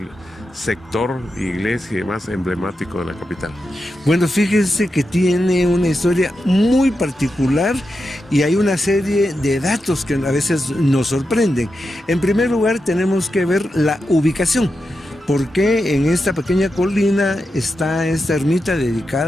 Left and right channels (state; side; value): normal; both; correlation 0.88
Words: sector, iglesia y demás emblemático de la capital? Bueno, fíjese que tiene una historia muy particular y hay una serie de datos que a veces nos sorprenden. En primer lugar, tenemos que ver la ubicación, porque en esta pequeña colina está esta ermita